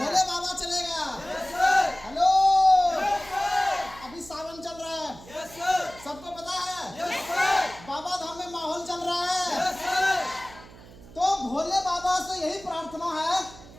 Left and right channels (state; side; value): noise; right; hum, 19 dB below the sound